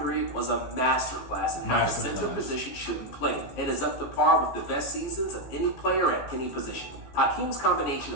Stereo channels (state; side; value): late; right; 15 ms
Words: period was a masterclass in how the center position should be played, and is up to par with the best seasons of any player at any position. Hakeem's combination